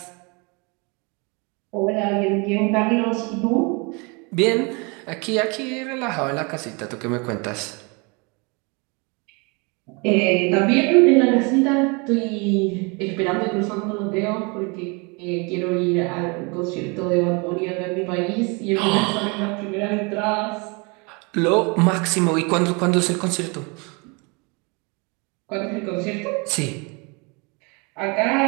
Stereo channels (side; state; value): left; quieter; 30.3 dB